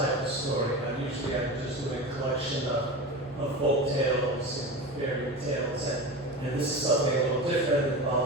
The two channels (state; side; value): normal; both; correlation 0.27